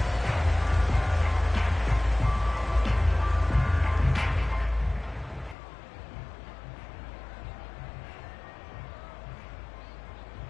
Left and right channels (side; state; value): right; drops out; at 5.6 s